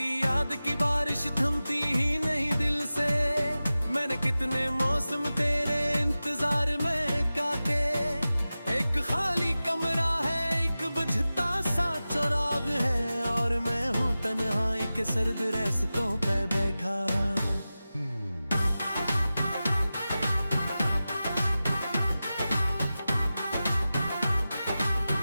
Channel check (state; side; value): inverted; both; correlation -0.95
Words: याद की बारिश थमती ही नहीं दिल से। मैंने कितने मौसम तेरे इंतजार में काटे, एक खाली कमरा है एक बुझता सा चराग है, और मैं हूँ तन्हाई के सर्द रास्तों पे बैठा।